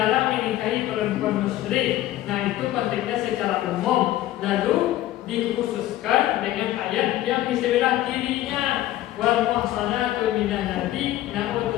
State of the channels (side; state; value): right; quieter; 14.5 dB